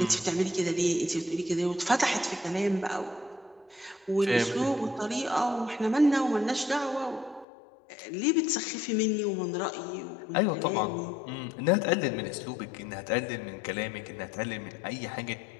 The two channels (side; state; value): right; drops out; at 7.5 s